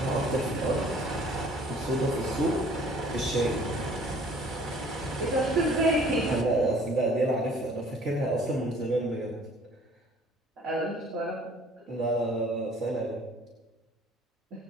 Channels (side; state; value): both; normal; correlation 0.54